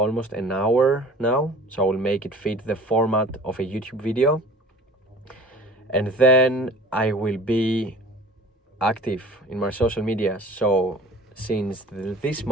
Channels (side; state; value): both; normal; correlation 0.46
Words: an hour now, so I will make it fit the format of a YouTube video. And then I will be active in my social media. So since this